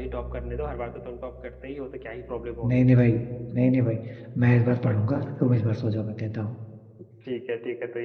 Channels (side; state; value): both; identical; correlation 1.00